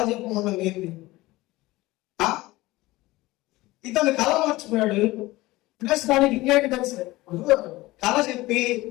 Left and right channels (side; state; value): right; quieter; 19.3 dB